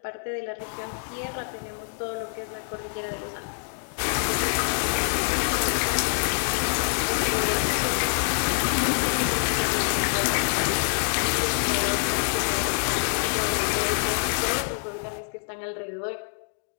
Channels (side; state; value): right; silent; 61 dB below the other